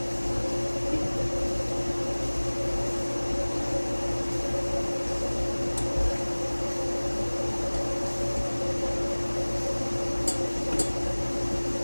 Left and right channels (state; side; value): inverted; both; correlation -1.00